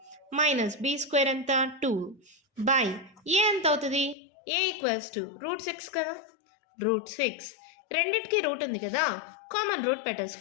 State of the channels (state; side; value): drops out; right; at 4.2 s